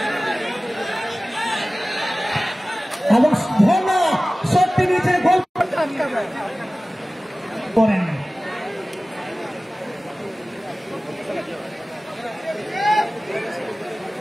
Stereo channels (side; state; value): both; normal; correlation 0.97